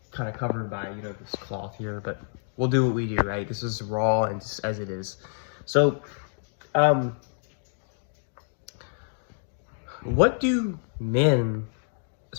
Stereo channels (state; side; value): silent; right; digital silence